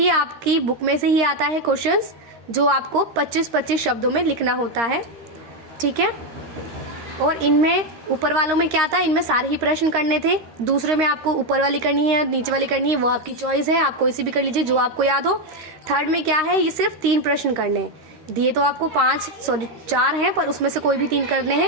आपकी बुक में से ही आता है क्वेश्चंस, जो आपको 25-25 शब्दों में लिखना होता है, ठीक है। और इनमें ऊपर वालों में क्या था, इनमें सारे ही प्रश्न करने थे। दूसरे में आपको ऊपर वाली करनी है, नीचे वाली करनी है, वो आपकी चॉइस है, आप कोई सी भी कर लीजिए जो आपको याद हो। थर्ड में क्या है, ये सिर्फ 3 प्रश्न करने हैं। दिए तो आपको 4 हैं, पर उसमें से कोई भी 3 करने हैं,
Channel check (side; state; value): left; late; 13 ms